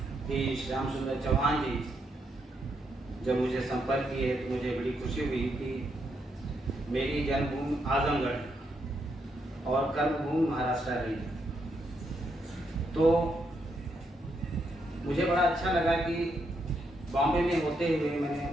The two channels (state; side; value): normal; both; correlation 0.79